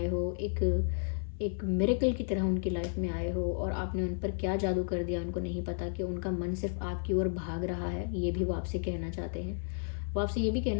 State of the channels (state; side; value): silent; right; 56 dB below the other